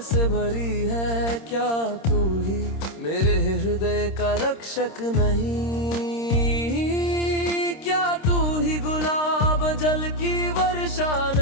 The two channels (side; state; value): right; late; 26 ms